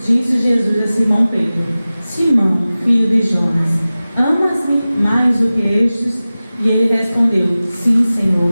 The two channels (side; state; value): both; inverted; correlation -0.97